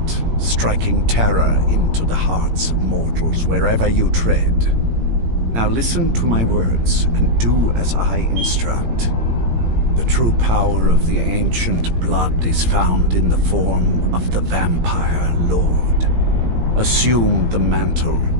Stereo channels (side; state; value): left; late; 17 ms